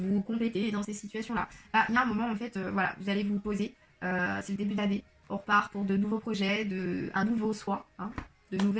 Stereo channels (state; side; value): identical; both; correlation 1.00